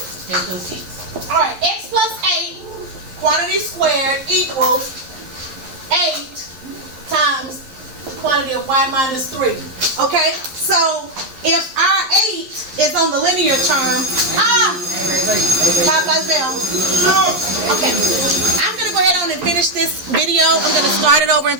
All right, x plus 8, quantity squared equals 8 times quantity of y minus 3. Okay, so if our 8 is on the linear term, Popeye's bell. Okay, I'm going to go ahead on and finish this video. I'm going to start it over and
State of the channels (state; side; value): late; left; 11 ms